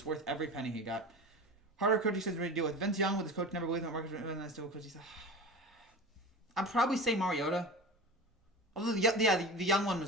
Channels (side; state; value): both; normal; correlation 0.32